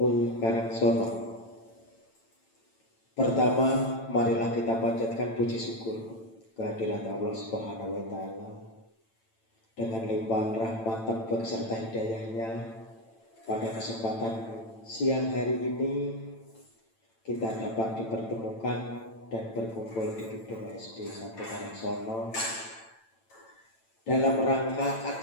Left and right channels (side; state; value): right; late; 9.0 ms